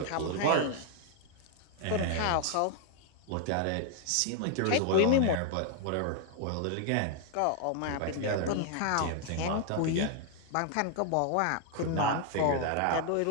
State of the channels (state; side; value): different; both; correlation 0.00